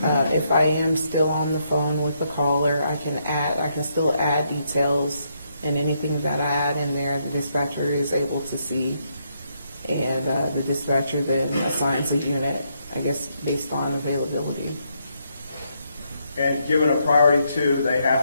I am still on the phone with the caller, I can still add details, and anything that I add in there, the dispatcher is able to see. And the dispatcher then assigns a unit, I guess, based on availability. And given a priority 2, they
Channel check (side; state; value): both; inverted; correlation -0.76